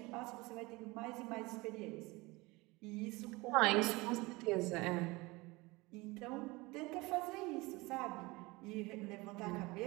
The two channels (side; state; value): left; quieter; 23.0 dB